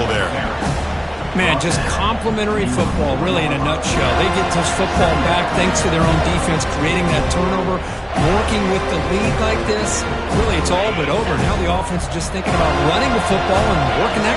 there. Man, just complimentary football, really, in a nutshell. They get this football back thanks to their own defense, creating that turnover, working with the lead like this. Really, it's all but over. Now the offense is just thinking about running the football and working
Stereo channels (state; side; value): identical; both; correlation 1.00